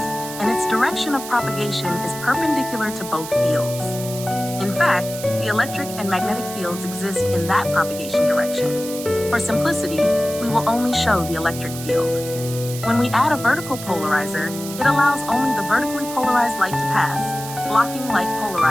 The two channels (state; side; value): noise; right; hiss, 11 dB below the sound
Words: and its direction of propagation is perpendicular to both fields. In fact, the electric and magnetic fields exist in that propagation direction. For simplicity, we will only show the electric field. When we add a vertical polarizer, it allows only the vertically polarized light to pass, blocking light